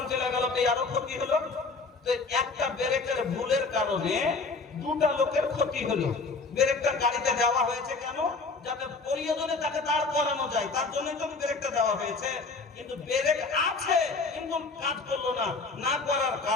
চলে গেল, তো আরো ক্ষতি হলো। তো একটা ব্রেকের ভুলের কারণে দুটা লোকের ক্ষতি হলো। ব্রেকটা গাড়িতে দেওয়া হয়েছে কেন? যাতে প্রয়োজনে তাকে দাঁড় করানো যায়, তার জন্যই তো ব্রেকটা দেওয়া হয়েছে। কিন্তু ব্রেক আছে কিন্তু কাজ করলো না, না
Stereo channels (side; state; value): right; quieter; 4.0 dB